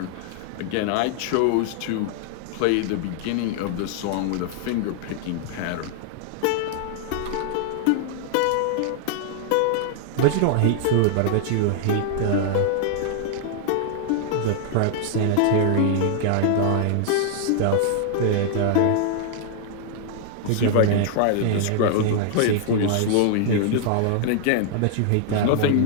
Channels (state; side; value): different; both; correlation -0.01